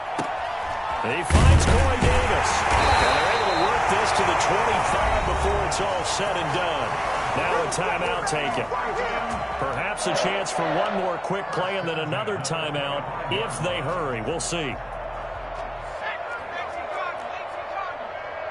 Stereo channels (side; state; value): both; identical; correlation 1.00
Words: He finds Corey Davis. And they're able to work this to the 25 before it's all said and done. Now a timeout taken. Perhaps a chance for one more quick play and then another timeout if they hurry. We'll see.